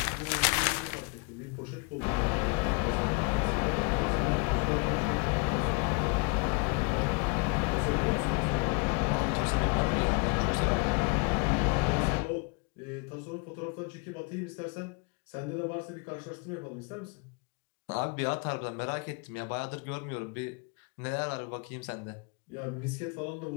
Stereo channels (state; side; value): quieter; right; 32.0 dB